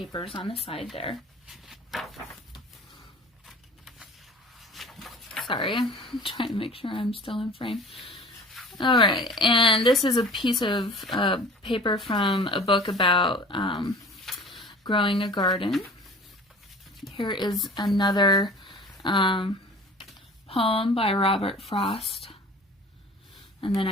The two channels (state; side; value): normal; both; correlation 0.43